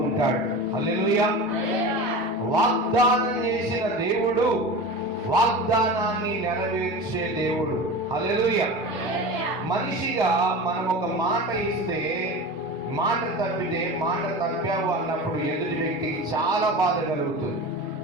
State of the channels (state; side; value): normal; both; correlation 0.31